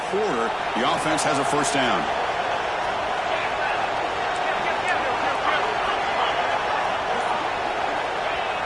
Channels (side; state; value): both; identical; correlation 1.00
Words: quarter. The offense has a first down.